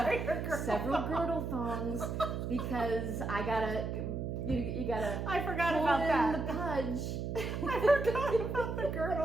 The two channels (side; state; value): right; noise; hum, 3 dB below the sound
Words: several girdle thongs because I gotta. You gotta. I forgot pull about in that. the pudge. I forgot about the